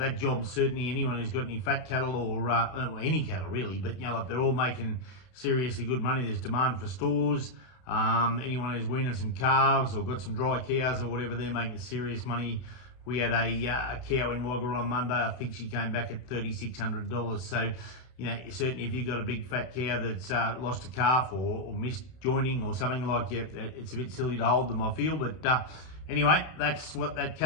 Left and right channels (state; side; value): late; right; 31 ms